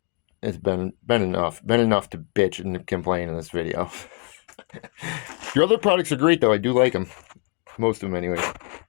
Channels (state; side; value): quieter; right; 36.6 dB